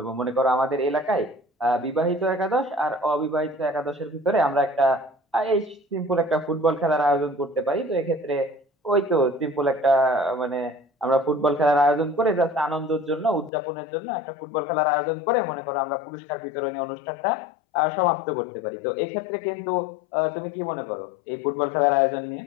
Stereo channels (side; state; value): right; drops out; at 13.5 s